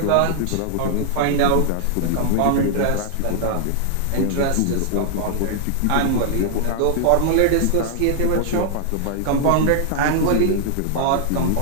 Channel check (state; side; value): different; both; correlation -0.01